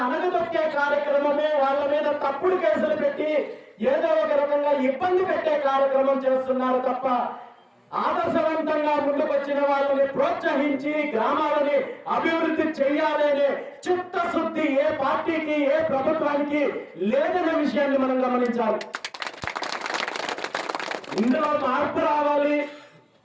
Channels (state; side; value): identical; both; correlation 1.00